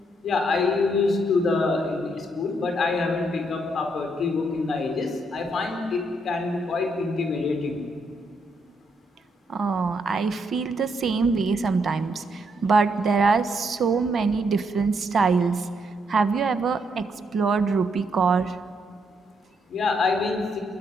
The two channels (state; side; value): normal; both; correlation 0.75